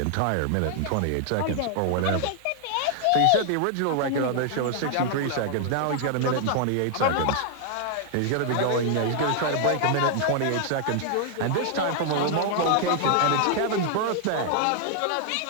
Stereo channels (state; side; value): different; both; correlation 0.00